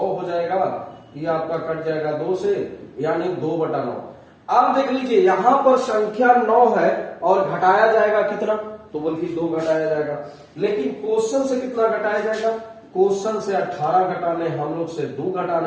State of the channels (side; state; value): both; identical; correlation 1.00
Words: जाएगा, ये आपका कट जाएगा 2 से, यानी 2/9। अब देख लीजिए यहां पर संख्या 9 है और घटाया जाएगा कितना, तो बल्कि 2 घटाया जाएगा, लेकिन क्वेश्चन से कितना घटाया जाएगा, क्वेश्चन से 18 घटाने, हम लोग से 2